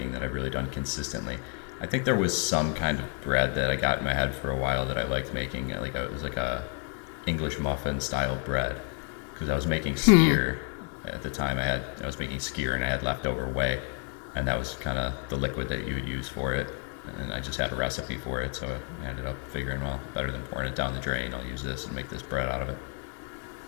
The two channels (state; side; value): quieter; right; 37.0 dB